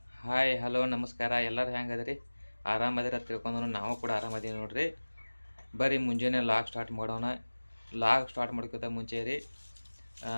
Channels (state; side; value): inverted; both; correlation -1.00